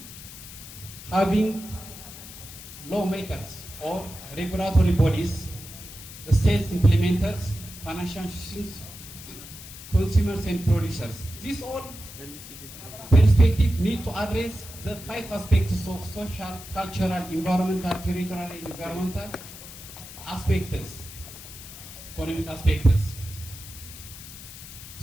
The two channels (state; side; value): noise; left; hiss, 14 dB below the sound